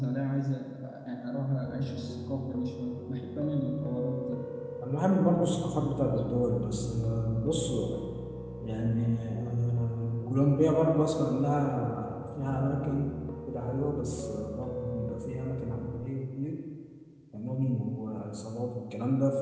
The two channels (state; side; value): identical; both; correlation 1.00